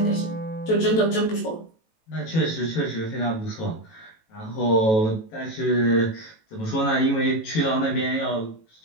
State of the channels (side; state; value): right; late; 18 ms